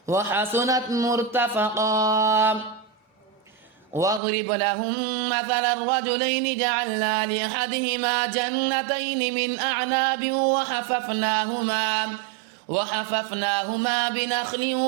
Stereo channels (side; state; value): left; drops out; at 4.2 s